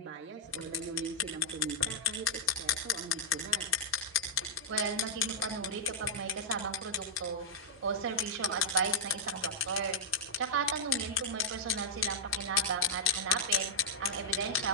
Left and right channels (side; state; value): both; normal; correlation -0.07